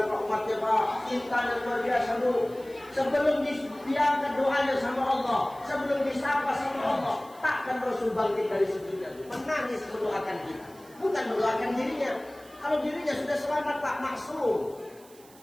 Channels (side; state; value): right; noise; hiss, 24 dB below the sound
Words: Pak umatnya Pak, cintanya luar biasa dulu. Sebelum diangkat doanya sama Allah, sebelum disapa sama Allah, takkan Rasul bangkit dari sujudnya, menangis mendoakan kita, bukan mendoakan dirinya. Kalau dirinya sudah selamat Pak, maksum,